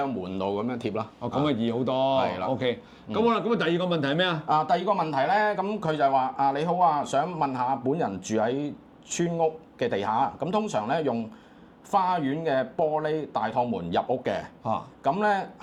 喺門度咁樣貼啦。咁啊易好多。係啦。OK。咁好啦，咁第二個問題係咩啊？第二個問題咧，咁佢就係話你好啊，想問下本人住喺村屋嘅地下，咁通常咧用花園嘅玻璃大趟門入屋嘅。咁咧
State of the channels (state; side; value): identical; both; correlation 1.00